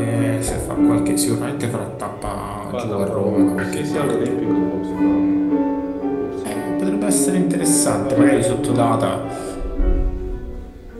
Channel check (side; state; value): both; identical; correlation 1.00